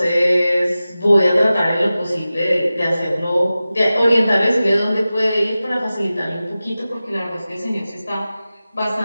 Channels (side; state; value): both; inverted; correlation -0.95